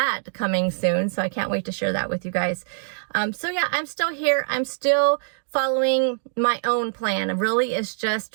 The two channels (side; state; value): left; silent; digital silence